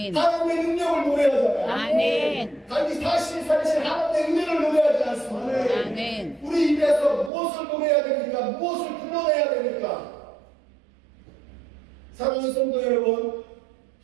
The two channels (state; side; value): drops out; left; at 7.3 s